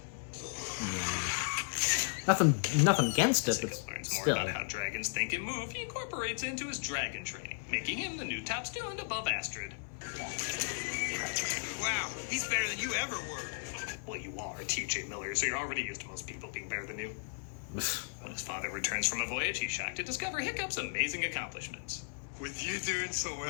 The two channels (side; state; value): right; silent; 54 dB below the other